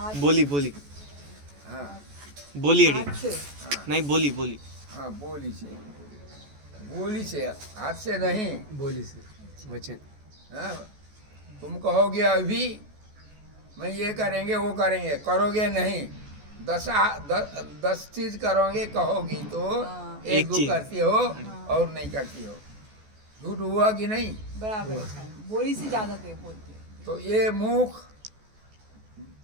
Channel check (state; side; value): late; left; 14 ms